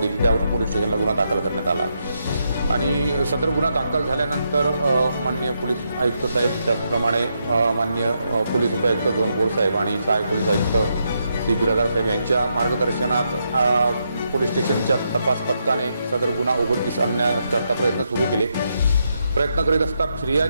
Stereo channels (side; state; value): both; inverted; correlation -0.81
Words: दिली। त्यावरून पोलीस स्टेशनला गुन्हा दाखल करण्यात आला आणि सदर गुन्हा दाखल झाल्यानंतर माननीय पोलीस आयुक्त साहेब, त्याचप्रमाणे माननीय पोलीस उपायुक्त झोन साहेब आणि सहाय्यक पोलीस आयुक्त श्री बिरादार साहेब यांच्या मार्गदर्शनात पोलीस स्टेशनच्या तपास पथकाने सदर गुन्हा उघडकीस आणण्याचा प्रयत्न सुरू केले। प्रयत्न करीत असता